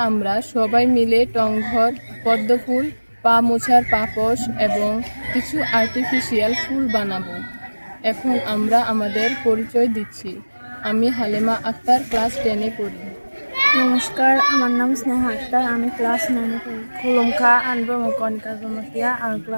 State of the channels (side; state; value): both; inverted; correlation -1.00